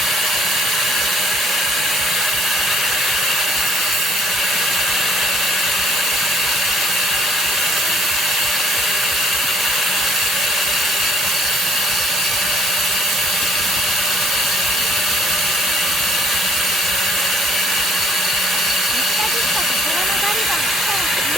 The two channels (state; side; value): normal; both; correlation 0.61